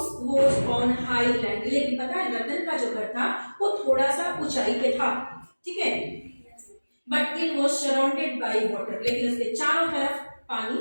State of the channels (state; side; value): inverted; both; correlation -1.00